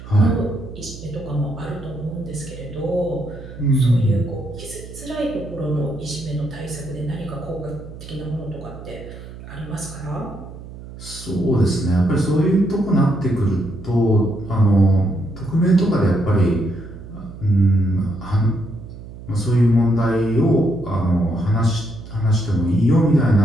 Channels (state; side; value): noise; right; hum, 14 dB below the sound